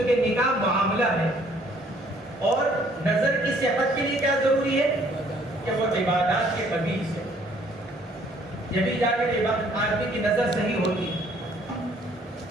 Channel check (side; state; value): both; normal; correlation 0.61